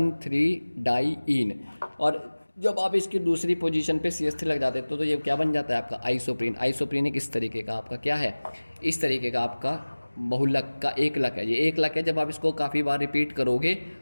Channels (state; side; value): inverted; both; correlation -1.00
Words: डाईइन। और जब आप इसकी दूसरी पोजीशन पे CH3 लग जाते तो ये क्या बन जाता है आपका आइसोप्रीन। आइसोप्रीन एक इस तरीके का आपका क्या है, इस तरीके का आपका बहुलक का एकलक है। ये एकलक है, जब आप इसको काफ़ी बार रिपीट करोगे